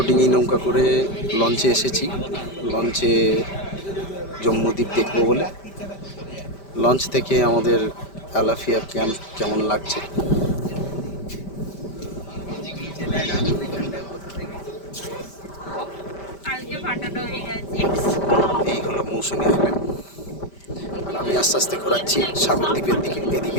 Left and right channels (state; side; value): late; right; 5.1 ms